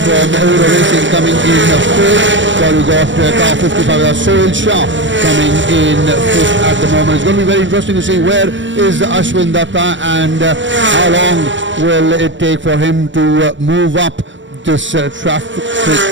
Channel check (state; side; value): late; left; 0.54 ms